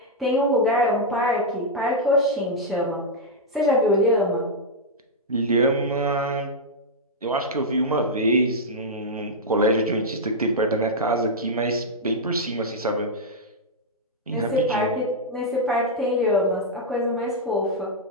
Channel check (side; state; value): both; normal; correlation -0.05